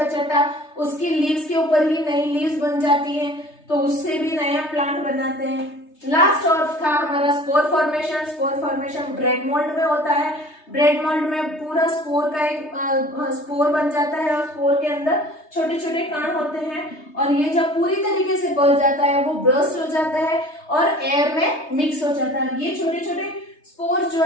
उसकी लीव्स के ऊपर ही नई लीव्स बन जाती हैं तो उससे भी नया प्लांट बनाते हैं। लास्ट और था हमारा spore formation. Spore formation bread mould में होता है। ब्रेड मोल्ड में पूरा स्पोर का एक स्पोर बन जाता है और स्पोर के अंदर छोटे छोटे कण होते हैं और ये जब पूरी तरीके से बढ़ जाता है वो ब्रस्ट हो जाता है और एयर में मिक्स हो जाता है। ये छोटे छोटे स्पोर जो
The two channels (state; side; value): late; right; 3.3 ms